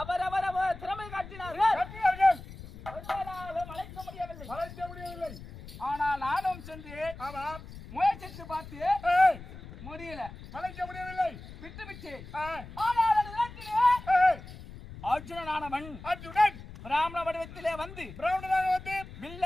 அவரவர் திறமை காட்டினார்கள். அழைக்க முடியவில்லை. ஆனால் நானும் சென்று முயற்சித்து பார்த்து முடியல, வளைக்க முடியவில்லை, விட்டு ஆனால் அர்ஜுனனானவன் பிராமண வடிவத்திலே வந்து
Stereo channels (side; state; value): left; noise; rumble, 15 dB below the sound